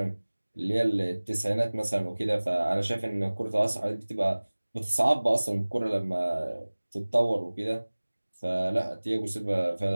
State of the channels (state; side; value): inverted; both; correlation -1.00